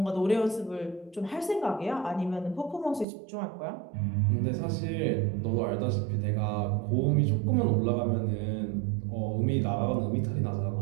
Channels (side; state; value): left; drops out; at 3.1 s